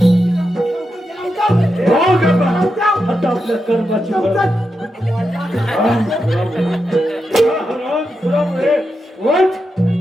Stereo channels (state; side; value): normal; both; correlation 0.87